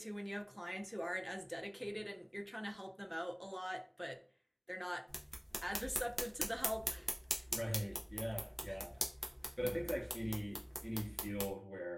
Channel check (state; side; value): identical; both; correlation 1.00